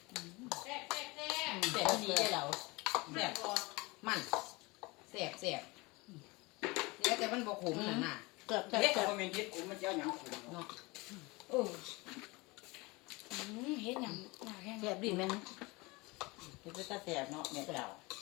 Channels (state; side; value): quieter; right; 24.5 dB